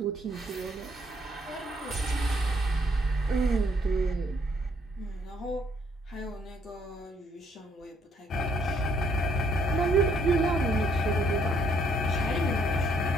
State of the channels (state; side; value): normal; both; correlation 0.68